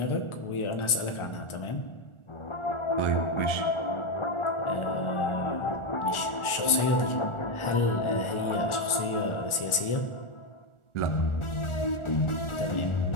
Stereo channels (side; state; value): right; late; 1.4 ms